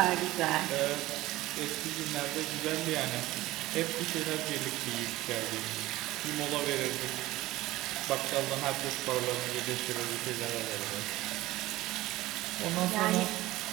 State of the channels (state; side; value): quieter; left; 17.5 dB